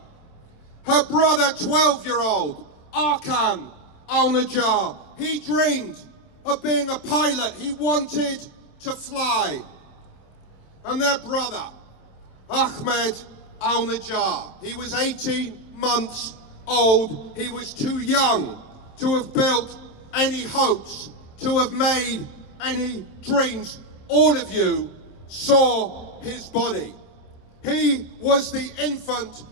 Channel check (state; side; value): late; right; 27 ms